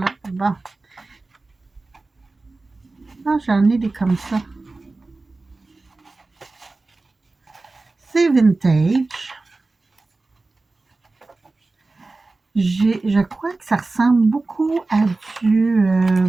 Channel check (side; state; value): left; quieter; 3.4 dB